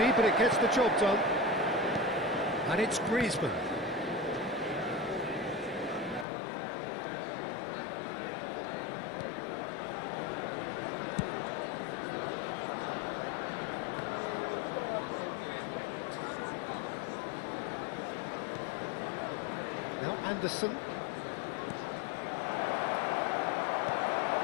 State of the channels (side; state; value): right; drops out; at 6.2 s